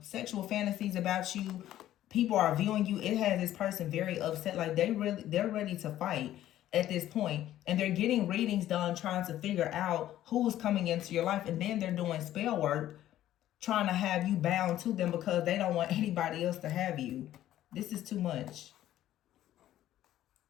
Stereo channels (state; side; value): quieter; right; 13.0 dB